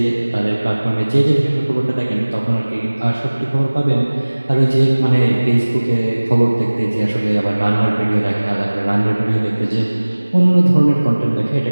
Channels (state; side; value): inverted; both; correlation -1.00